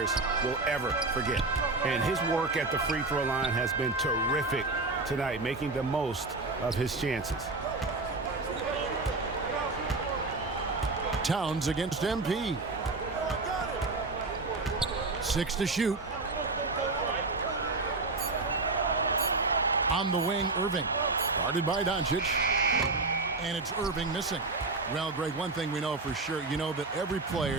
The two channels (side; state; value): left; quieter; 3.5 dB